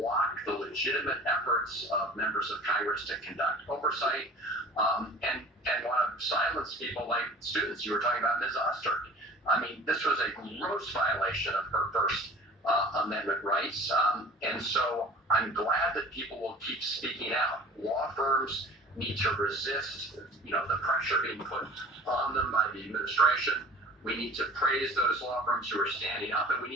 the legitimate efforts of members of Congress to conduct oversight and want to silence people like students. You were talking about Ms. Oster. I mean, this was a gross violation of her First Amendment rights. And so I'm glad that people will keep speaking out. Law firms need to resist, the pressure being put on them by the administration. We need to praise those law firms who are standing up, and we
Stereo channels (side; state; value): both; normal; correlation 0.44